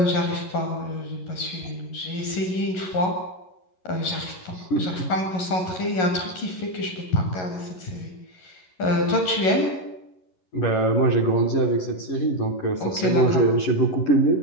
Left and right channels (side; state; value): right; late; 11 ms